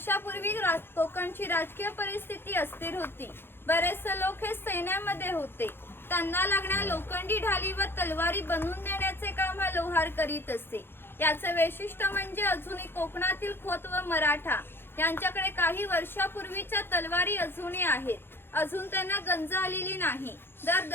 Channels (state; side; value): late; right; 0.11 ms